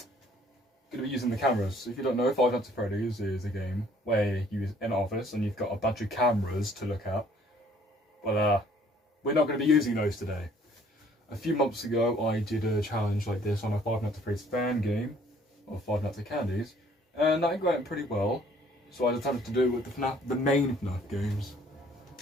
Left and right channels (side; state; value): both; normal; correlation 0.59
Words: going to be using the cameras. So if you don't know, Five Nights at Freddy's is a game where you're in an office and you've got a bunch of cameras to look at. But we're not going to be using those today. A few months ago, I did a challenge like this on a Five Nights at Freddy's fan game, or Five Nights at Candy's, and that went pretty well. So I decided to do it with the main FNAF games.